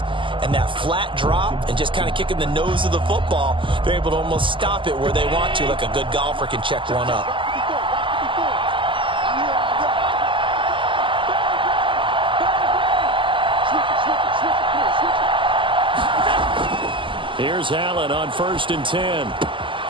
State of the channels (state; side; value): late; left; 0.25 ms